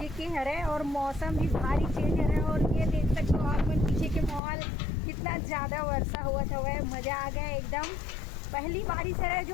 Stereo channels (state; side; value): drops out; right; at 4.4 s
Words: के है और मौसम भी भारी चेंज है। और ये देख सकते हो आप मन पीछे के माहौल कितना ज़्यादा वर्षा हुआ था वह मज़ा आ गया एकदम। पहली बारिश है